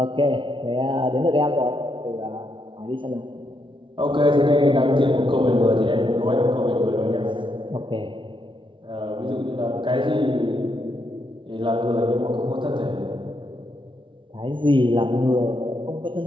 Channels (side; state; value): left; late; 0.24 ms